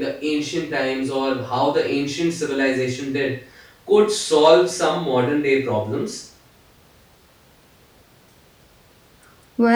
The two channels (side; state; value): both; identical; correlation 1.00